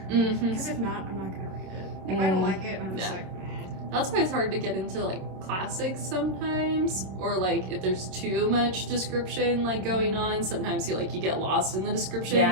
Mm-hmm. Because if not, I'm not gonna read it. If I don't like it, I'm just Yeah. like, That's why it's hard to get into like classics sometimes, or like if there's too much description like going on, sometimes you get lost in the description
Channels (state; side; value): late; left; 27 ms